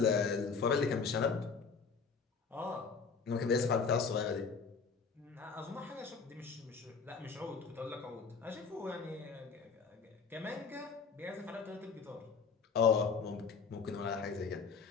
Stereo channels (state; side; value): quieter; right; 5.4 dB